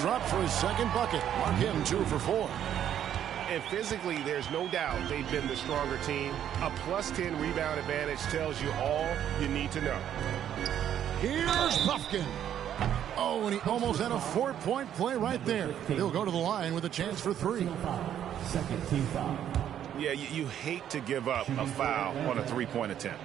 for his second bucket. Mark him 2 for 4. And physically, there's no doubt they've been the stronger team. A +10 rebound advantage tells you all you need to know. Here's Buffkin. Oh, and he almost had a 4-point play right there. He'll go to the line with a chance for 3. Second team foul. Yeah, you hate to give up a foul on a 3-point attempt.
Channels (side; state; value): left; quieter; 10.2 dB